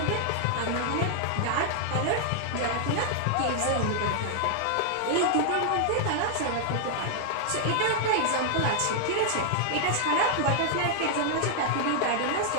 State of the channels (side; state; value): both; different; correlation 0.00